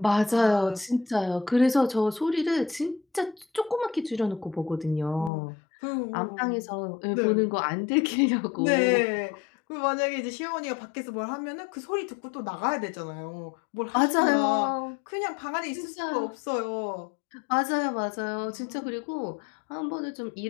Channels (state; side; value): drops out; right; at 5.3 s